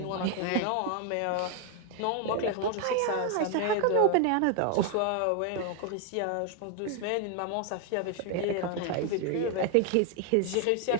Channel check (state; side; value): different; both; correlation 0.01